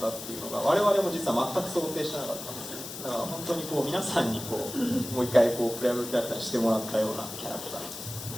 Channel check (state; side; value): noise; left; hiss, 10 dB below the sound